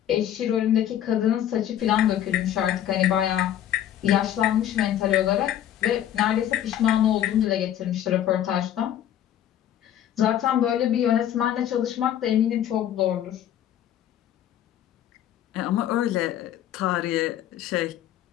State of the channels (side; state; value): right; quieter; 11.2 dB